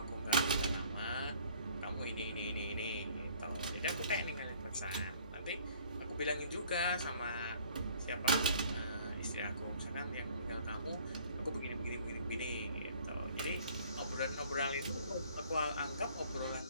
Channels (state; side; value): inverted; both; correlation -0.55